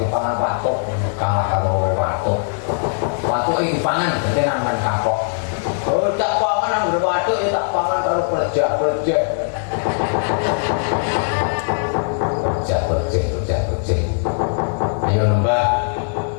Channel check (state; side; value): silent; right; digital silence